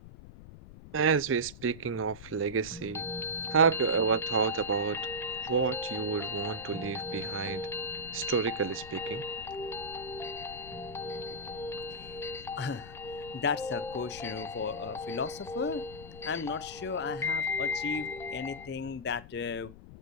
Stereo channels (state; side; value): noise; left; rumble, 16 dB below the sound